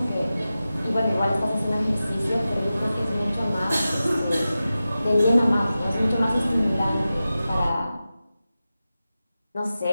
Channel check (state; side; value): inverted; both; correlation -0.94